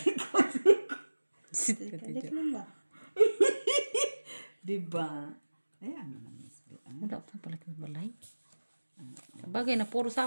Sit ka kalik dyan. lang ba? Diba? Ayan mo na, Miss B. Wala pa pala kang balay. Bagay na puro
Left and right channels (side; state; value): both; inverted; correlation -1.00